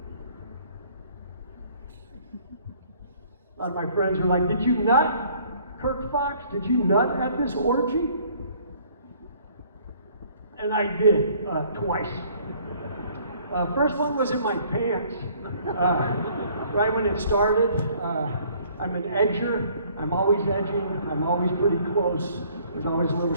A lot of my friends are like, did you nut, Kirk Fox? Did you nut at this orgy? And I did, twice. First one was in my pants, right when it started. I'm an edger. I'm always edging. I'm always pretty close. There's always a little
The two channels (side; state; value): both; inverted; correlation -0.58